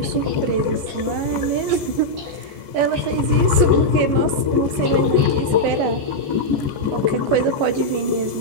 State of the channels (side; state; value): left; late; 14 ms